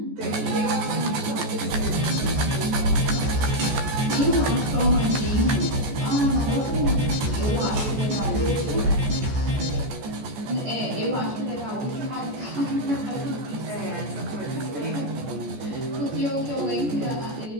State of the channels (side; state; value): left; late; 14 ms